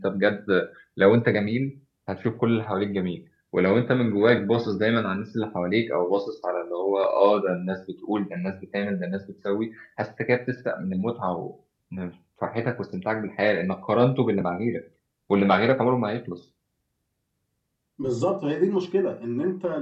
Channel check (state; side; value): identical; both; correlation 1.00